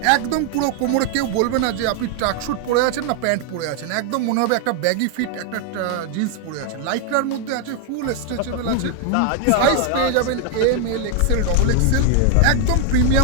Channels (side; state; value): both; different; correlation 0.00